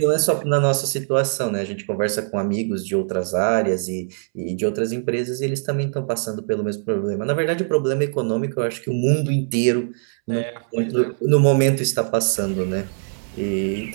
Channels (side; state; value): left; silent; 64 dB below the other